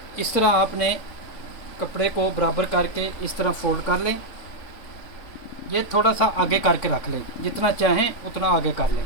इस तरह आपने कपड़े को बराबर करके इस तरह फोल्ड कर लें। ये थोड़ा सा आगे करके रख लें, जितना चाहें उतना आगे कर लें।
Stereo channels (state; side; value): late; right; 3.5 ms